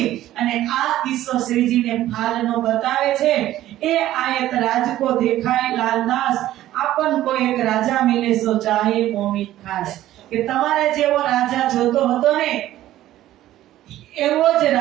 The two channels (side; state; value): left; quieter; 13.9 dB